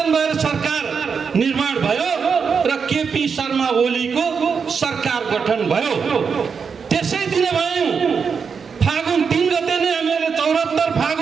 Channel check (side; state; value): left; quieter; 6.0 dB